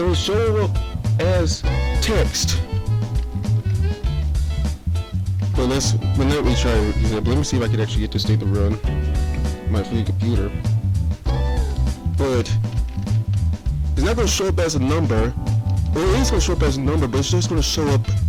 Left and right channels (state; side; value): identical; both; correlation 1.00